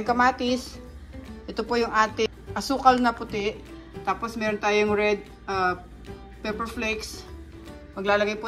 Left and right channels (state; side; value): identical; both; correlation 1.00